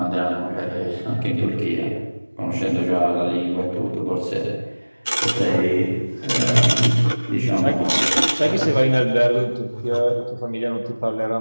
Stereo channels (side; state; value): both; inverted; correlation -1.00